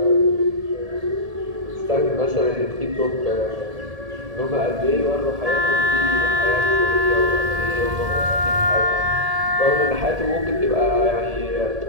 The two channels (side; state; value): left; late; 1.8 ms